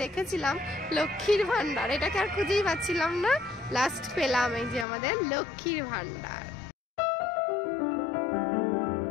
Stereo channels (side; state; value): right; drops out; at 4.9 s